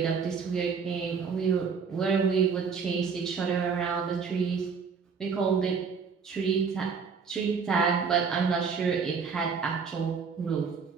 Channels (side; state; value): left; quieter; 5.8 dB